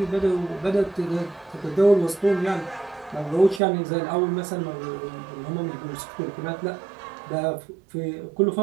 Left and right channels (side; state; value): left; drops out; at 3.6 s